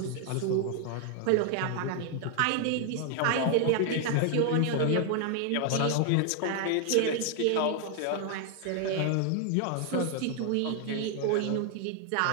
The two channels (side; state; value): both; different; correlation 0.00